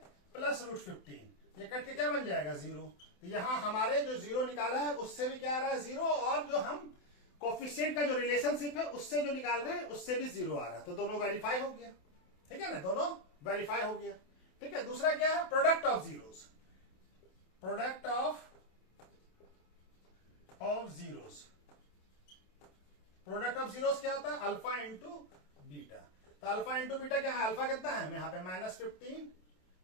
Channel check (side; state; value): right; late; 27 ms